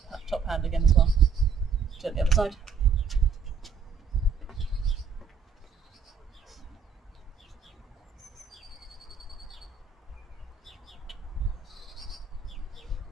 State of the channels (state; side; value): quieter; left; 5.8 dB